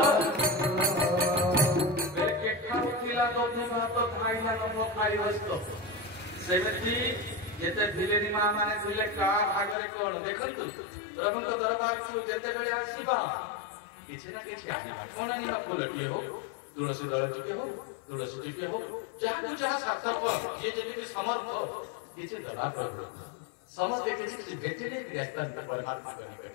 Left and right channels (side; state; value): right; drops out; at 9.8 s